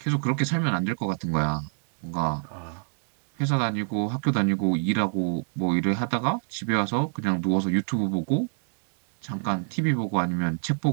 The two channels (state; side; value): silent; left; 60 dB below the other